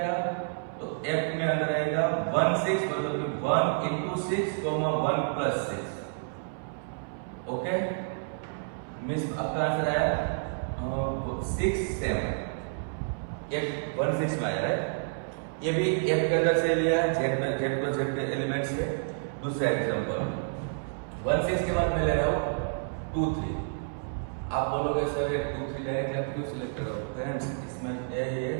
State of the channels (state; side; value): silent; left; 58 dB below the other